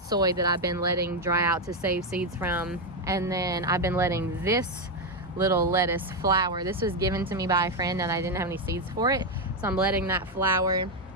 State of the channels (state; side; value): normal; both; correlation 0.06